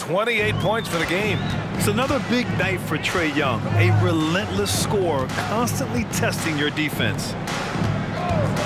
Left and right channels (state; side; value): identical; both; correlation 1.00